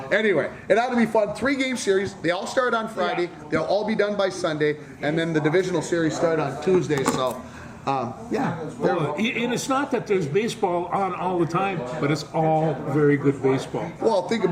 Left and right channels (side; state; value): both; identical; correlation 1.00